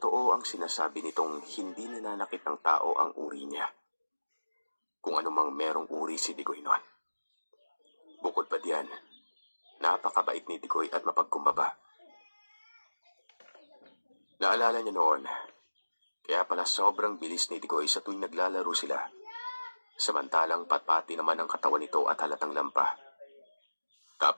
ang sinasabi nitong hindi nananakit ng tao ang uri niya, kung anumang merong uri si Tigoy noon. Bukod pa diyan, napakabait ni Tigoy at mapagkumbaba. Naalala niya noon, kaya pala sobrang bilis ni Tigoy sa tuwing naglalaro sila, samantalang patpati naman ang katawan nito at halatang lampa.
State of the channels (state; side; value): inverted; both; correlation -1.00